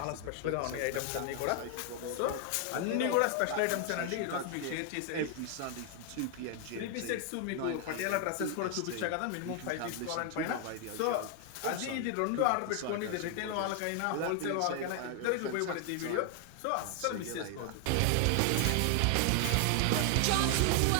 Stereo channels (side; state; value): both; different; correlation 0.00